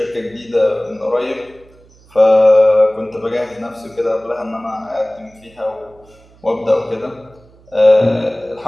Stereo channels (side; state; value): right; noise; hum, 28 dB below the sound